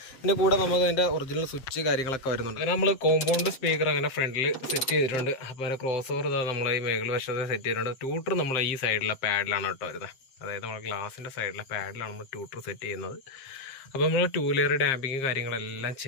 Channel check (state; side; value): late; right; 7.6 ms